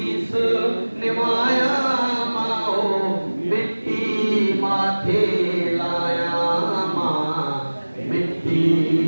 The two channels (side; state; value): both; inverted; correlation -1.00